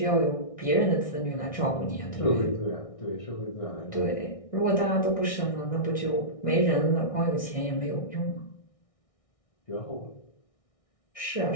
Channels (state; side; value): late; right; 1.6 ms